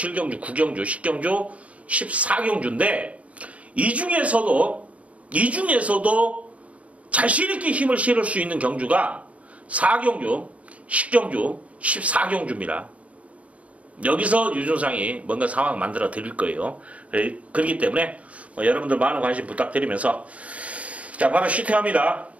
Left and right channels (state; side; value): late; left; 0.066 ms